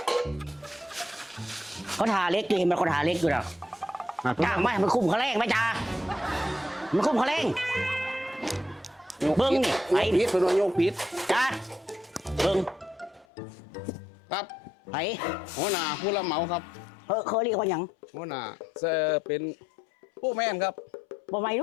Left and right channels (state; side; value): drops out; right; at 13.2 s